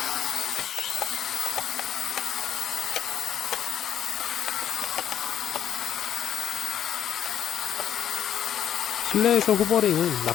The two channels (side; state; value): right; quieter; 9.9 dB